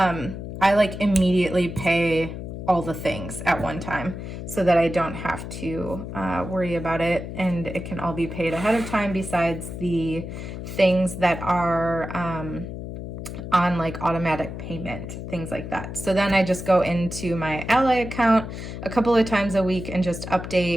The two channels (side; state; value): left; noise; hum, 8 dB below the sound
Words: I like immediately pay all the things at one time so that I don't have to worry about it, and it can all be paid ahead of time besides the things that are on like automatic payment, things like that. So then I just go into my Ally account a couple of times a week and just